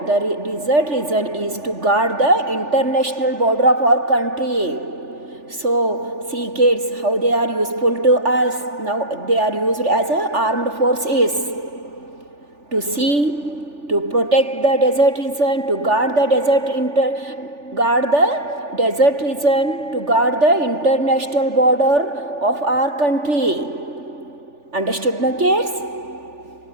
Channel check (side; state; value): left; late; 3.4 ms